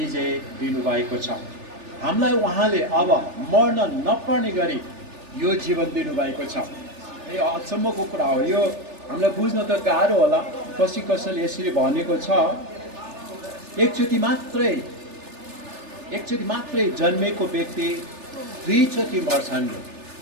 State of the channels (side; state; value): left; late; 3.4 ms